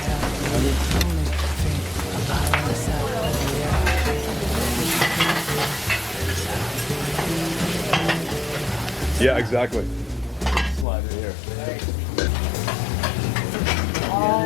Yeah, exactly. Slide it here.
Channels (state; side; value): drops out; right; at 10.9 s